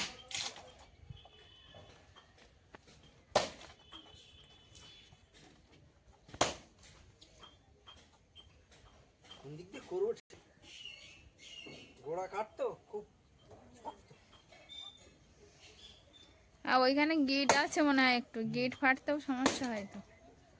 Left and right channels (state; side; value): identical; both; correlation 1.00